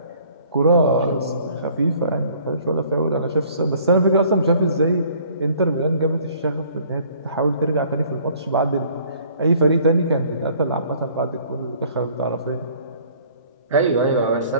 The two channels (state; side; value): inverted; both; correlation -0.56